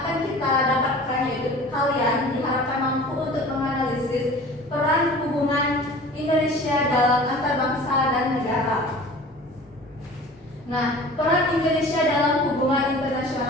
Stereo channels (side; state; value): both; normal; correlation 0.42